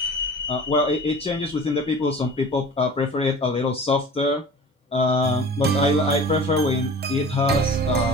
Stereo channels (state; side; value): normal; both; correlation 0.40